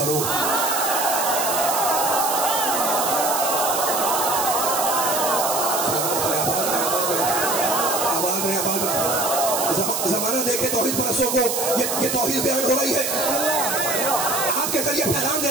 زمانہ دیکھے توحید پرستوں کو, یہ توحید بیان ہو رہی ہے. آپ کے ذریعے پیغام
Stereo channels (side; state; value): right; noise; hiss, 1 dB below the sound